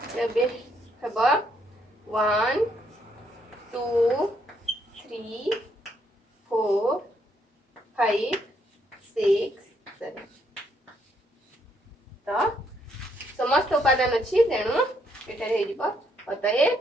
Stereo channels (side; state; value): both; normal; correlation 0.73